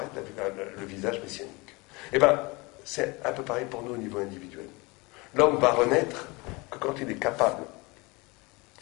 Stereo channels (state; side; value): quieter; right; 25.4 dB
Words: le visage messianique. Eh bien, c'est un peu pareil pour nous au niveau individuel. L'homme va renaître que quand il est capable